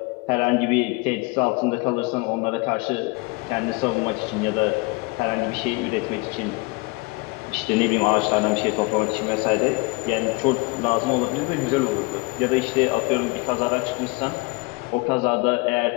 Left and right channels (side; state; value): right; quieter; 26.0 dB